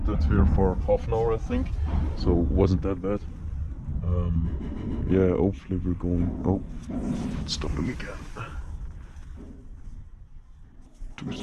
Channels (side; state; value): both; identical; correlation 1.00